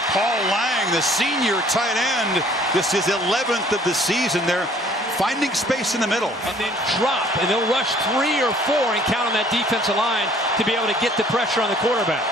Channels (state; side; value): normal; both; correlation 0.57